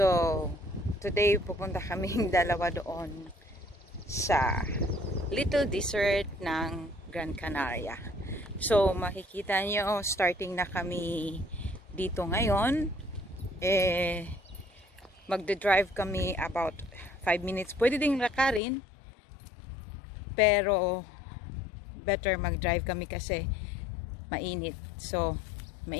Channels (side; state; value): right; drops out; at 18.6 s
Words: today pupunta kaming dalawa doon sa little desert ng Gran Canaria. So, makikita nyo, starting na kami dito ngayon. Magde-drive kami about 5 minutes. Pwede ding lakarin, pero better mag-drive kami kasi mainit. So,